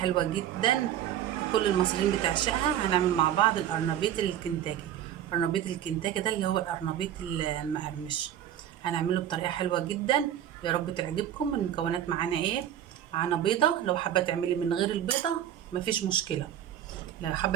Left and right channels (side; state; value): left; quieter; 10.9 dB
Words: جدا كل المصريين بتعشقها. هنعمل مع بعض القرنبيط الكنتاكي. قرنبيط الكنتاكي ده اللي هو القرنبيط المقرمش، هنعمله بطريقه حلوه جدا. يا رب تعجبكم. المكونات معانا ايه؟ معانا بيضه، لو حابه تعملي من غير البيضه مفيش مشكله، لو